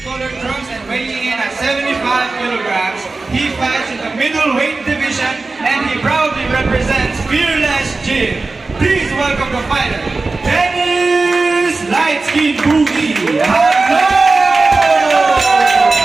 Weighing in at 75 kilograms, he fights in the middleweight division and he proudly represents Fearless Gym. Please welcome the fighter, Dennis Lightskin Boogie. Hello!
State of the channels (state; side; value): quieter; left; 3.6 dB